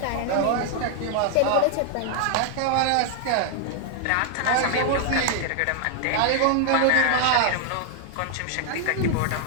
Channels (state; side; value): different; both; correlation 0.00